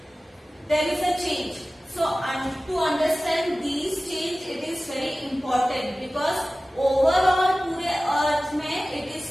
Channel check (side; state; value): both; normal; correlation 0.96